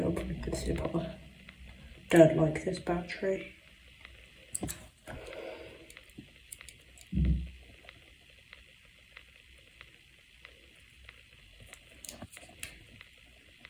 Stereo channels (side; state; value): both; identical; correlation 1.00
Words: I'll probably consider proper. Don't like this battery.